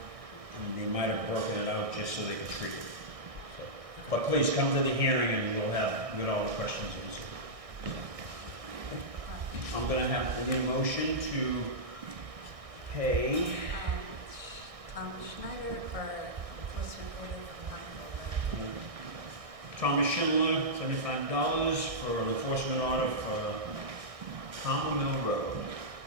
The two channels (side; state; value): left; late; 1.6 ms